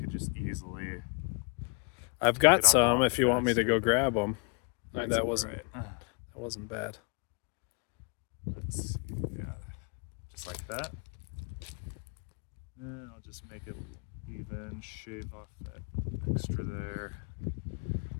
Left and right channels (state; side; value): quieter; right; 33.6 dB